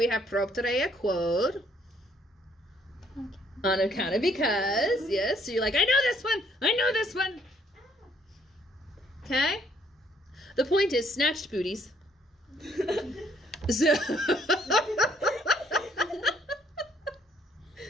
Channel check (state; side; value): normal; both; correlation 0.66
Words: have propterea quod. On account of because. Yes? So you're like, I know this one. Okay? The point is snatched booties. So